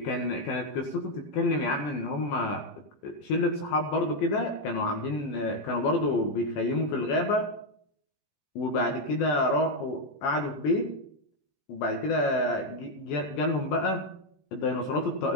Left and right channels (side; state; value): right; late; 15 ms